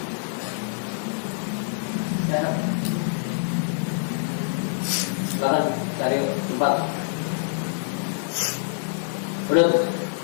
Ya. Silakan cari tempat. Udah.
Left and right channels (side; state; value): right; silent; digital silence